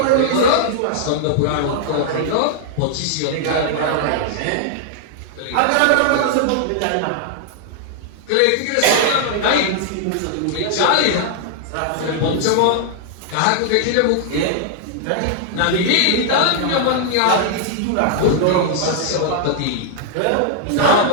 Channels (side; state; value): both; different; correlation -0.01